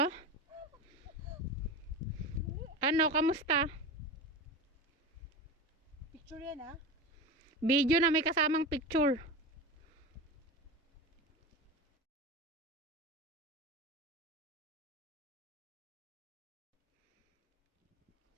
Ano, kamusta? Picture yan ha? Video na may kasamang picture.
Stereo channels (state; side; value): normal; both; correlation 0.26